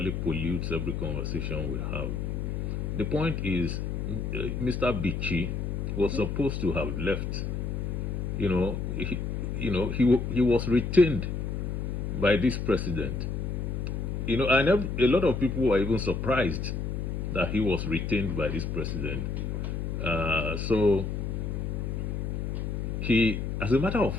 pollutes every conversation we have. The point is, Mr. Bichi was supposed to have left. He was retained by this president. And a lot of people were even surprised that he was retained by this president. So he, as a matter of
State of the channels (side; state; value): left; noise; hum, 2 dB below the sound